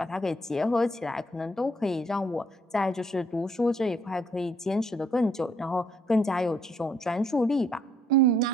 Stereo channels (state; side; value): normal; both; correlation 0.67